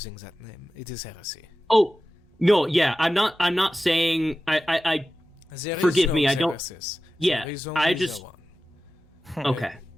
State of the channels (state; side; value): normal; both; correlation 0.94